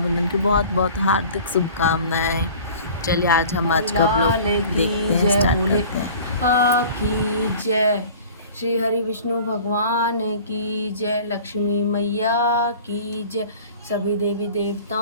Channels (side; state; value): both; inverted; correlation -0.44